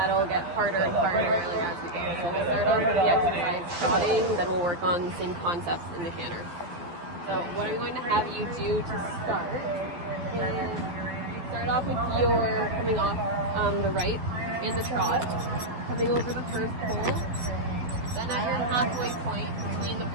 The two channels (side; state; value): left; late; 12 ms